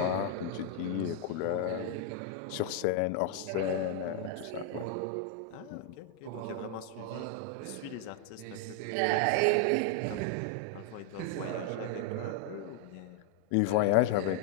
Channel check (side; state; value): both; different; correlation 0.00